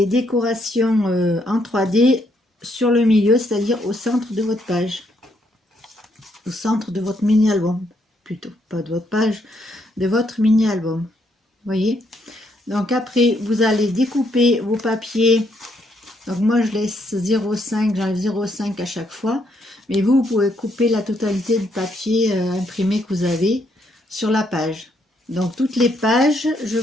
décorations en 3D sur le milieu, c'est-à-dire au centre de votre page, au centre de votre mini-album, plutôt, pas de votre page, de votre mini-album. Voyez. Donc après, vous allez découper vos papiers. Donc moi je laisse 0,5, j'enlève 0,5 à chaque fois. Mais vous pouvez couper la totalité du papier imprimé que vous avez sur la page. Donc toutes les pages, je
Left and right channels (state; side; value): normal; both; correlation 0.74